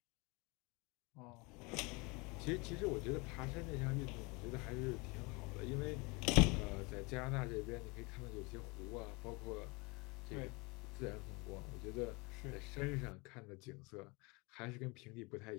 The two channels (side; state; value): right; quieter; 27.5 dB